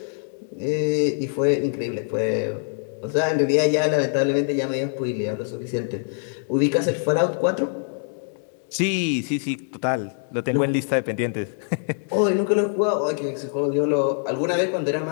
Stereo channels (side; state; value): right; silent; 63 dB below the other